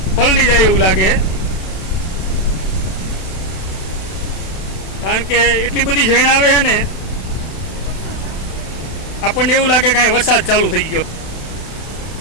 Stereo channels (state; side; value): late; right; 32 ms